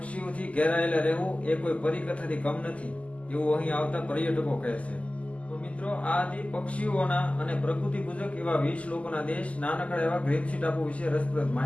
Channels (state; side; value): late; right; 0.065 ms